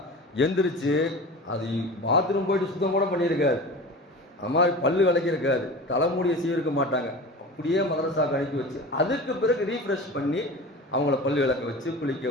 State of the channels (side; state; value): both; normal; correlation 0.34